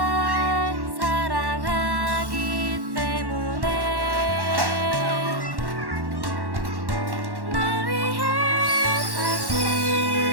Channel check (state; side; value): late; left; 1.1 ms